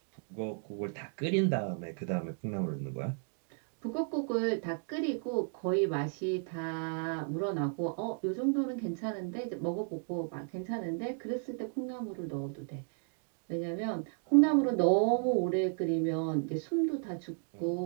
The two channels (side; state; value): left; silent; 55 dB below the other